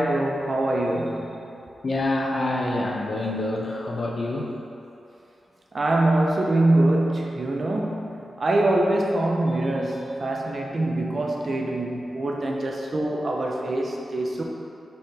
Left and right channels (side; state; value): both; normal; correlation 0.92